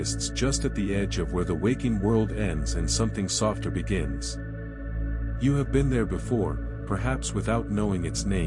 just at the edge of where the waking world ends and something softer begins. You have been there before, perhaps without knowing its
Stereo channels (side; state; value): both; identical; correlation 1.00